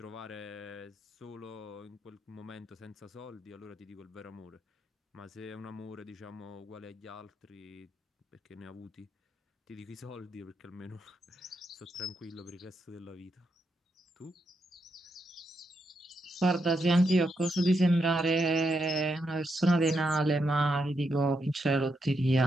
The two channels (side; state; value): both; normal; correlation 0.82